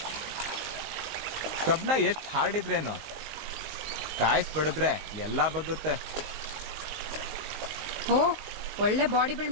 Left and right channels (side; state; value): left; late; 19 ms